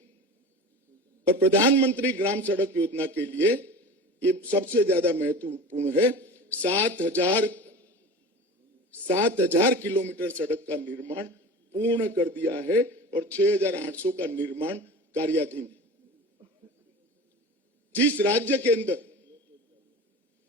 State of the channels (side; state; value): both; normal; correlation 0.34